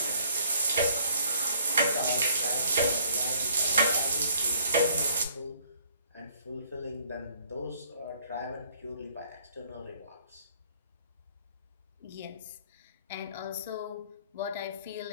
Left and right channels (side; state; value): both; inverted; correlation -0.61